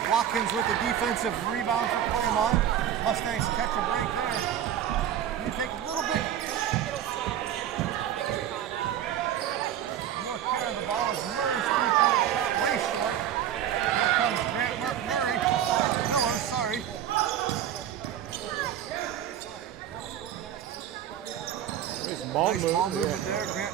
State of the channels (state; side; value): quieter; left; 10.4 dB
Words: Watkins with the defensive rebound for Claymont. Mustangs catch a break there. You take a little bit more care of the ball as Murray's 3-point shot way short. Here comes Grant Miller, sorry. Nice ball movement there.